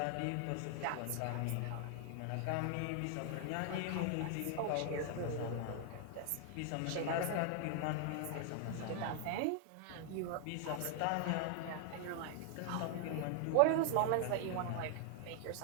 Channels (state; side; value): different; both; correlation 0.00